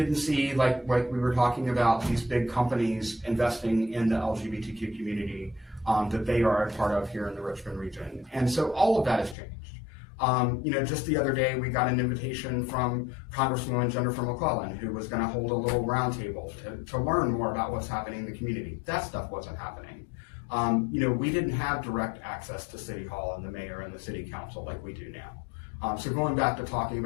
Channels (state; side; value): drops out; right; at 9.3 s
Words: see, like we were talking about, these big companies investing in the LGBTQ community that they are a part of here in the Richmond region. And so all of that has changed. Just the other day, we got an invitation from Congresswoman Jennifer McClellan, who was going to hold a little roundtable to learn more about what's happening in the community. That stuff wasn't happening. We didn't have direct access to City Hall and the mayor and the city council like we do now. So going back to talking